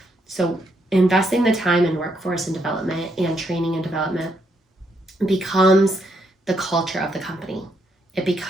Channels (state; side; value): normal; both; correlation 0.76